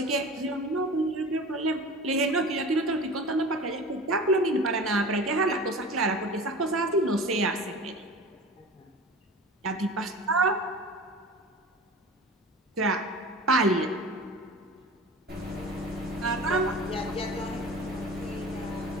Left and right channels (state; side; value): normal; both; correlation 0.36